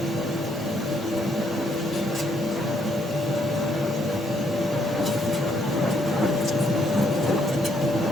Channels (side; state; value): both; normal; correlation 0.71